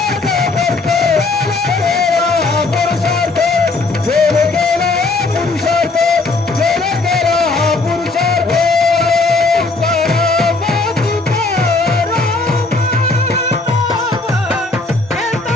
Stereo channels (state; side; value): quieter; right; 3.6 dB